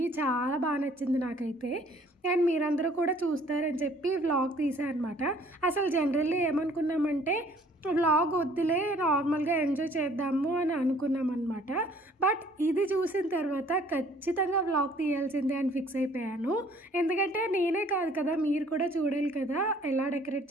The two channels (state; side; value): normal; both; correlation 0.57